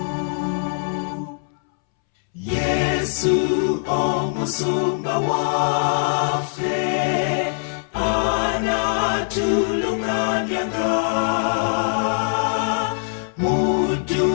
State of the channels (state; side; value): silent; right; 64 dB below the other